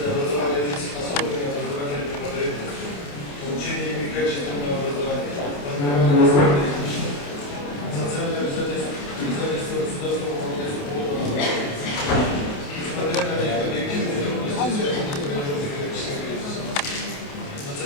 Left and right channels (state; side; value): late; right; 28 ms